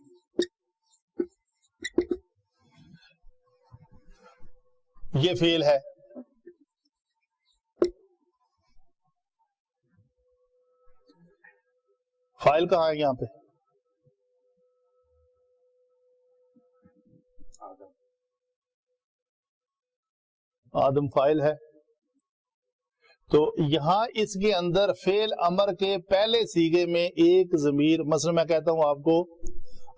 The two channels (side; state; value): both; identical; correlation 1.00